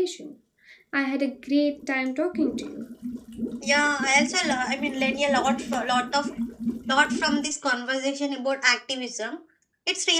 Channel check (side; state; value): both; identical; correlation 1.00